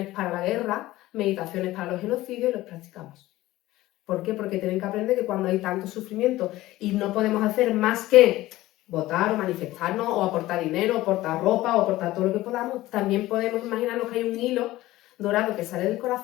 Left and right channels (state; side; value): quieter; right; 16.9 dB